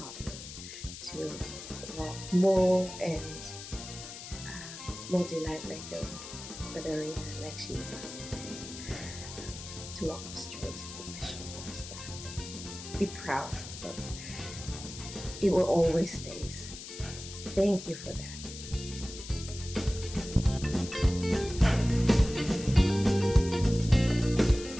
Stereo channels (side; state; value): left; noise; hiss, 11 dB below the sound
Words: me to walk more and more delight like a feather, like she was, and to walk up straight with my shoulders back. Be proud. So it will always stay. Thank you for that.